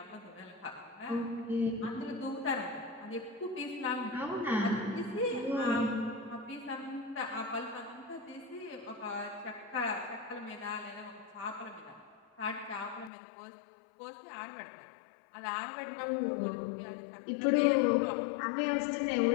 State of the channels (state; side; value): drops out; right; at 13.1 s